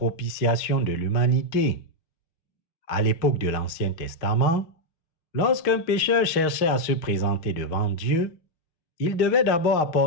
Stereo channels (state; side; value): late; right; 6.0 ms